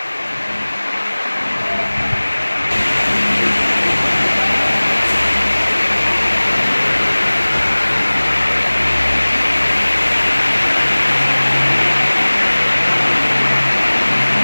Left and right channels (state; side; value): inverted; both; correlation -1.00